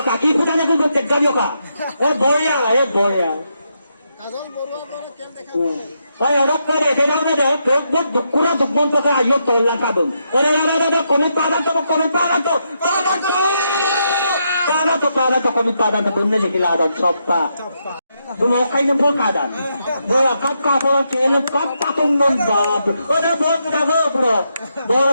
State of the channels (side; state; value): both; inverted; correlation -0.81